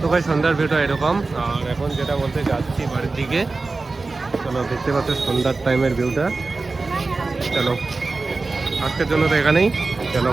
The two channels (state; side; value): quieter; left; 3.7 dB